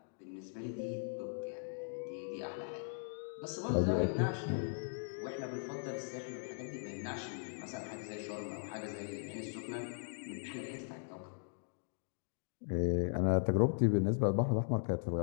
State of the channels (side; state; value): right; silent; digital silence